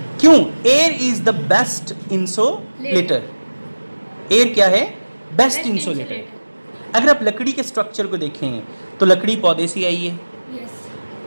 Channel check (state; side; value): inverted; both; correlation -1.00